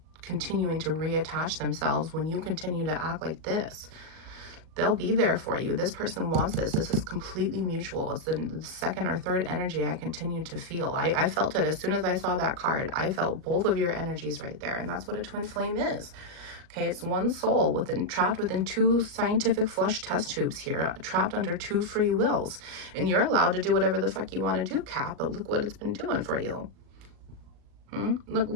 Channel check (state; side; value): late; left; 38 ms